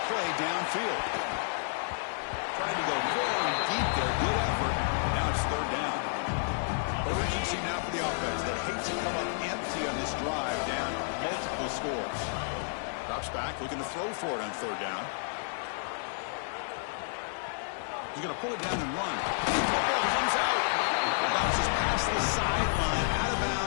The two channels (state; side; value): silent; right; digital silence